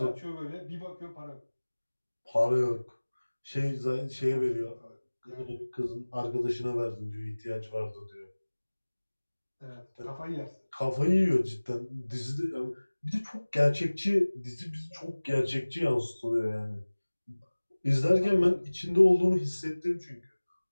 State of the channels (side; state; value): both; inverted; correlation -1.00